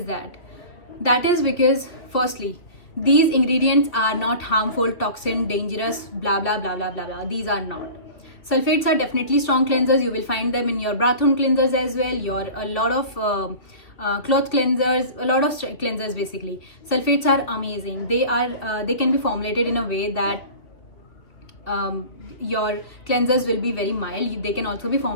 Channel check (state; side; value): late; right; 3.0 ms